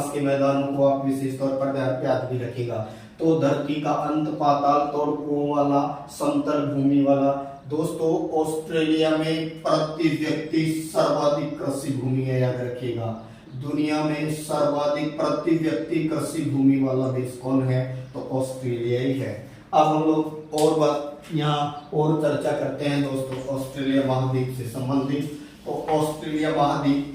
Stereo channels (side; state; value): both; identical; correlation 1.00